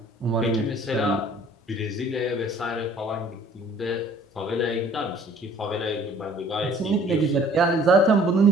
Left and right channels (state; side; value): normal; both; correlation 0.54